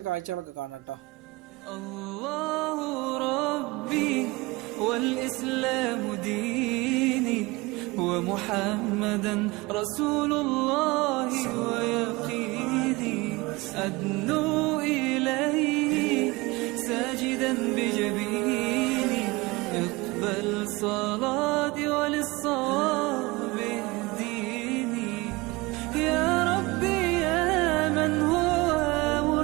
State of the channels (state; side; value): quieter; left; 22.9 dB